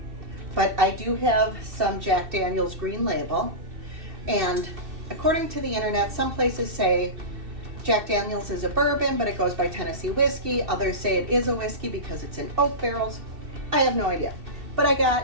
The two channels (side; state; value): left; late; 2.7 ms